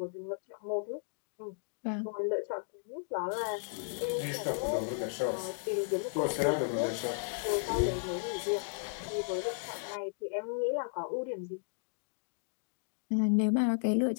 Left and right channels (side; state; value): right; silent; digital silence